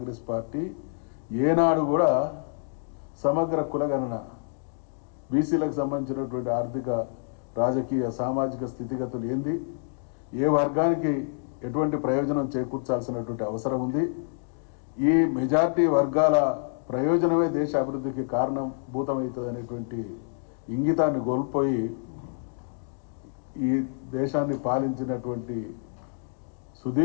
పార్టీ ఏనాడు కూడా సమగ్ర కులగణన, బీసీలకు సంబంధించినటువంటి ఆర్థిక, రాజకీయ, సామాజిక స్థితిగతులు ఏంది, ఏ వర్గానికి ఎటువంటి ప్రయోజనం చేకూర్చాల్సినటువంటి అవసరం ఉంది, ఈ మెజారిటీ వర్గాల ప్రయోజనమే దేశ అభివృద్ధికి కారణభూతమవుతుంది అనేటువంటి ఇంగితాన్ని కోల్పోయి ఈ దేశాన్ని పాలించినటువంటి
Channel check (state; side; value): silent; right; digital silence